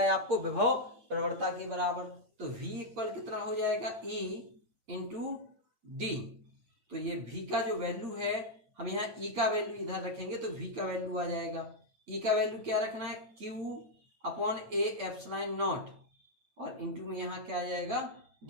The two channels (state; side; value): late; left; 8.8 ms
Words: आपको विभव प्रवणता के बराबर। तो V इक्वल कितना हो जाएगा, E इंटू डी। तो ये V का जो वैल्यू है, हम यहाँ E का वैल्यू इधर रखेंगे तो V का वैल्यू आ जाएगा। E का वैल्यू क्या रखना है, Q upon A epsilon not और इंटू में यहाँ क्या आ जाएगा